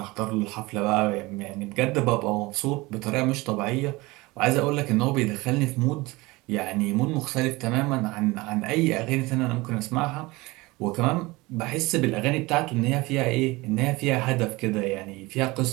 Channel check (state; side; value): quieter; left; 22.1 dB